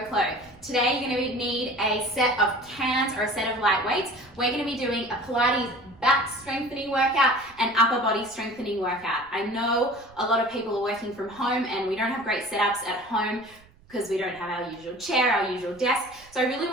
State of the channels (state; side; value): noise; right; rumble, 27 dB below the sound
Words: Chlo. Today you're going to need a set of cans or a set of light weights. We're going to be doing a Pilates back strengthening workout and upper body strengthening workout. I know a lot of people are working from home and we don't have great setups at home because we don't have our usual chair, our usual desk. So I really